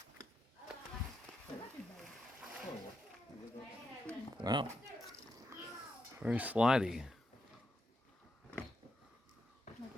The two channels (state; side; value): normal; both; correlation 0.84